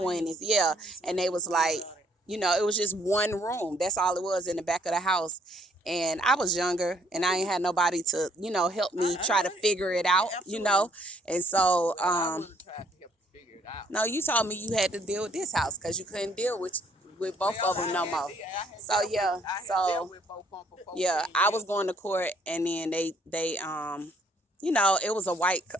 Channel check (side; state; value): both; normal; correlation 0.65